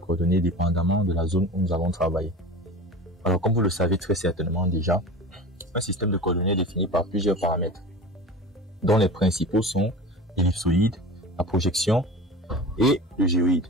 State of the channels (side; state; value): both; normal; correlation 0.34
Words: dépendamment de la zone où nous allons travailler. Alors, comme vous le savez très certainement déjà, un système de coordonnées est défini par plusieurs paramètres, dont les principaux sont l'ellipsoïde, la projection et le géoïde.